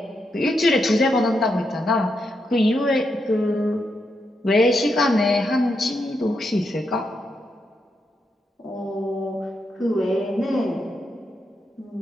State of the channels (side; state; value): both; normal; correlation 0.82